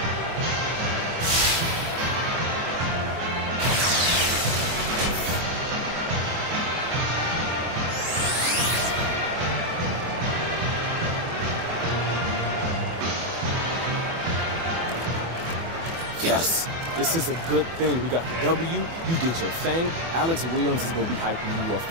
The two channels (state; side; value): late; left; 24 ms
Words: Yes, this is a good thing. We got the W. You did your thing. Alex Williams is going to be hyping you up